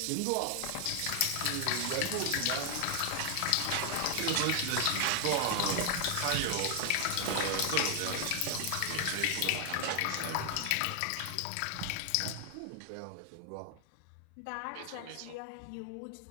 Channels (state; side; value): different; both; correlation 0.00